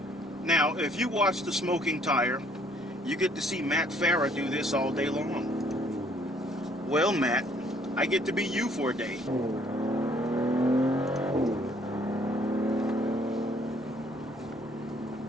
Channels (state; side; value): normal; both; correlation 0.62